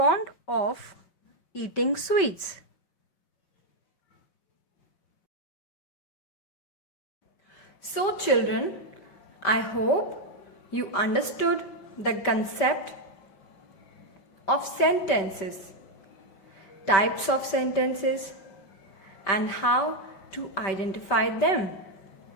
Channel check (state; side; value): late; right; 5.1 ms